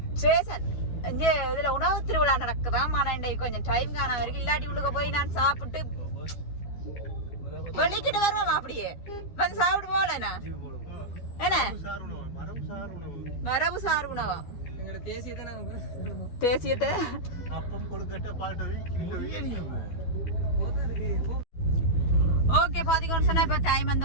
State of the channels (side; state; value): right; late; 12 ms